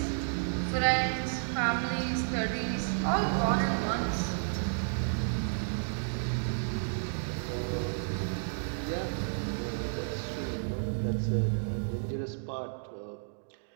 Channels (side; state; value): left; silent; digital silence